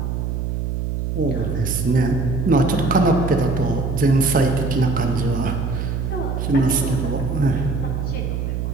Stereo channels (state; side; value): noise; right; hum, 2 dB below the sound